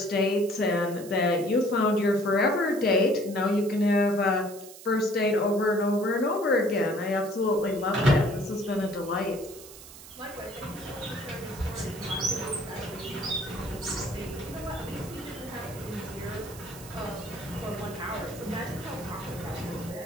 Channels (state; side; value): noise; right; hiss, 17 dB below the sound